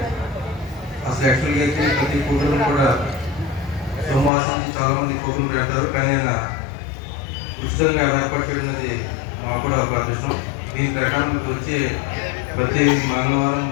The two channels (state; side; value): drops out; right; at 4.3 s